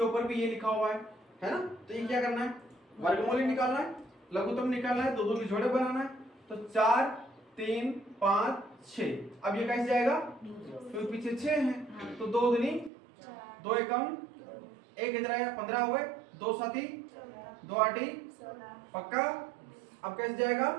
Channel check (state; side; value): drops out; left; at 12.9 s